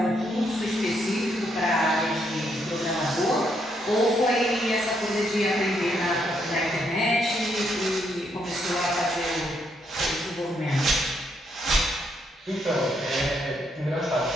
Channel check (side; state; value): both; normal; correlation 0.75